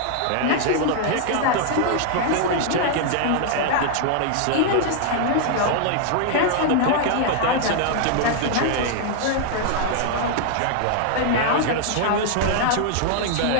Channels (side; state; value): both; different; correlation 0.00